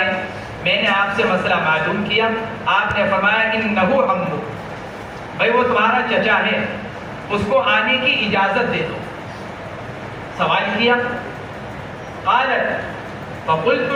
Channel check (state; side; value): identical; both; correlation 1.00